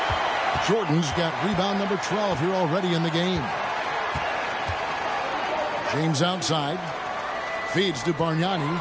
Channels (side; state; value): both; identical; correlation 1.00